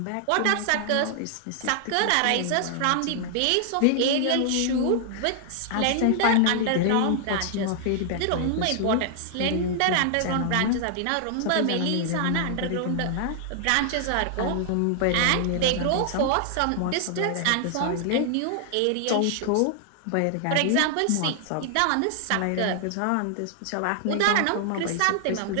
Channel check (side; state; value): both; different; correlation 0.00